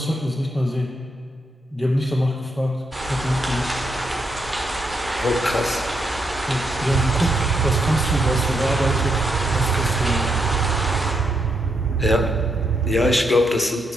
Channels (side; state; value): both; normal; correlation 0.79